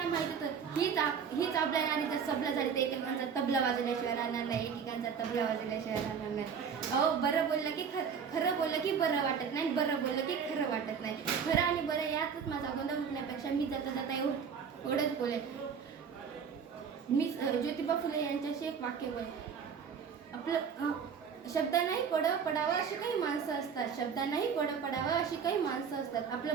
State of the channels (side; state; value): left; quieter; 6.7 dB